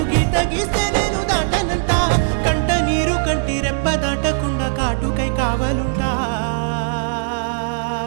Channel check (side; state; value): left; silent; 62 dB below the other